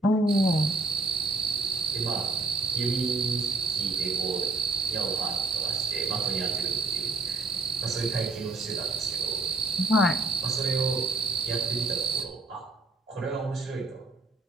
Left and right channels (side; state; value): left; quieter; 3.4 dB